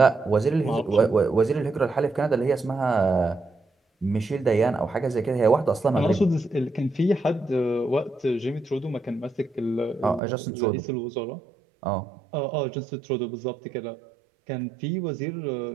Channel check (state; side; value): drops out; left; at 10.2 s